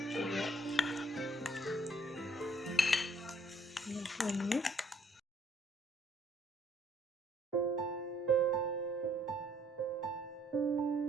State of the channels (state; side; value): normal; both; correlation 0.63